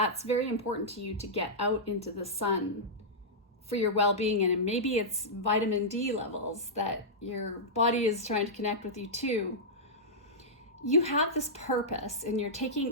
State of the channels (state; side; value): normal; both; correlation -0.11